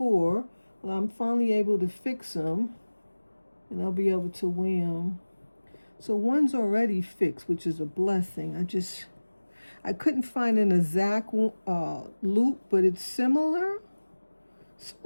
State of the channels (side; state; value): both; inverted; correlation -1.00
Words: Well, I'm finally able to fix them, and I'll be able to wear them. So one's already fixed, which is a blessing. I couldn't find an exact loop, but it's similar.